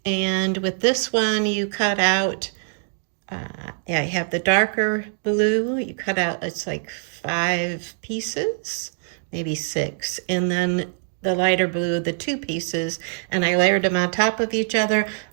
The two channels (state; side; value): silent; left; digital silence